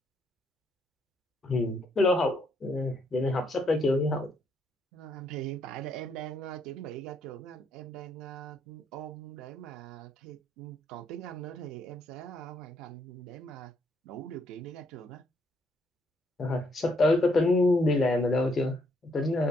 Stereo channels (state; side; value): normal; both; correlation 0.72